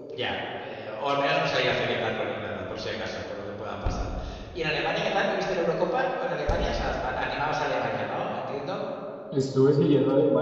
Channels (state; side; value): identical; both; correlation 1.00